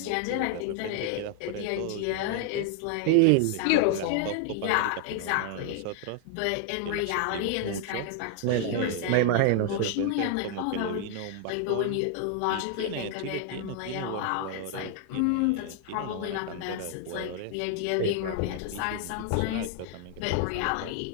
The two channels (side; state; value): both; different; correlation 0.00